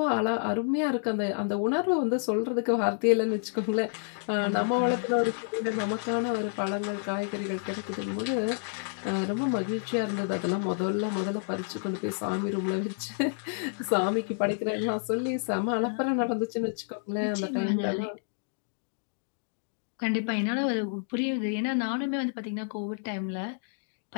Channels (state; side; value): silent; right; digital silence